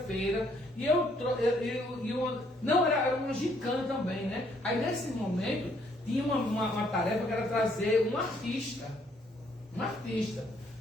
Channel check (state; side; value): normal; both; correlation 0.68